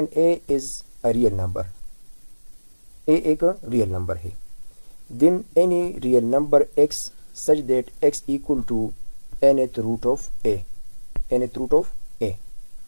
a is a real number, a एक रियल नंबर है। Then any real number x such that x equal to nth root of a, nth root of a.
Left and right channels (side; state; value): both; inverted; correlation -1.00